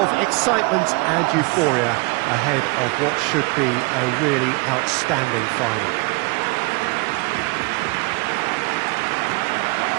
excitement and euphoria ahead of what should be a really outstanding final.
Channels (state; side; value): quieter; left; 27.4 dB